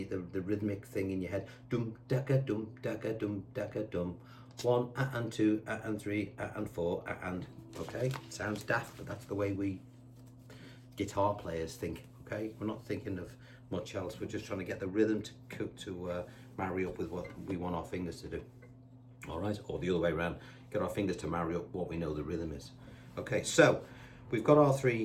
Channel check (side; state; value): both; identical; correlation 1.00